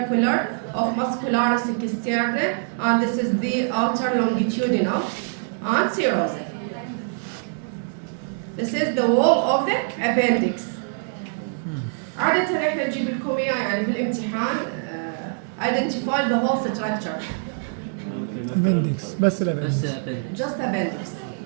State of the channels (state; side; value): silent; left; digital silence